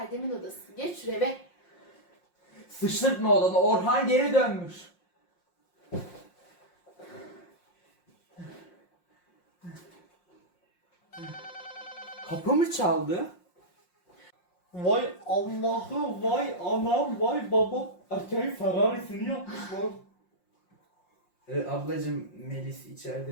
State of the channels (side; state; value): right; late; 5.6 ms